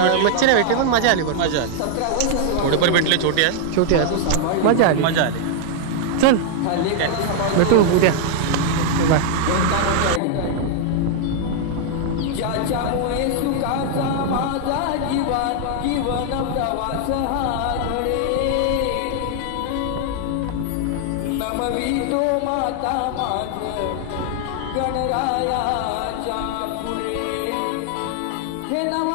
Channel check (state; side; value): different; both; correlation -0.01